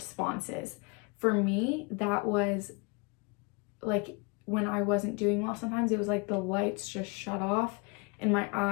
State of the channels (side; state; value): right; quieter; 30.5 dB